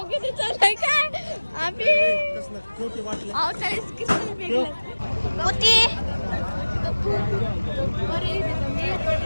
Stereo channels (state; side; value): inverted; both; correlation -1.00